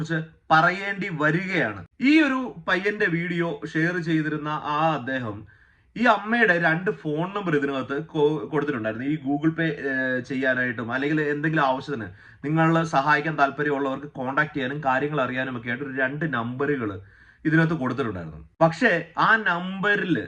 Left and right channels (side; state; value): both; identical; correlation 1.00